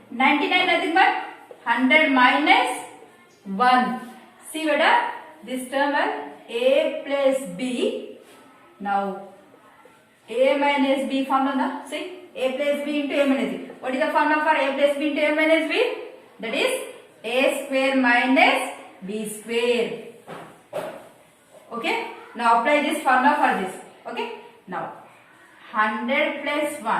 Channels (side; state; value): both; identical; correlation 1.00